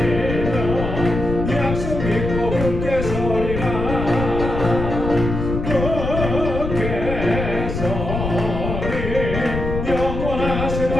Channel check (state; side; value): noise; left; rumble, 4 dB below the sound